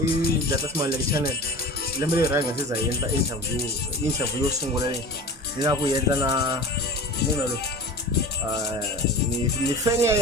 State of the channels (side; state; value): both; normal; correlation 0.36